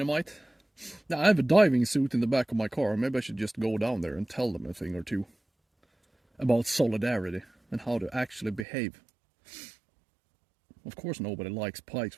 Now, I have a diving suit in the back of my car. Maybe I should just go down there and tell them a thing or two about solidarity and how to actually behave. Of course nobody likes pikes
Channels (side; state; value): left; drops out; at 8.7 s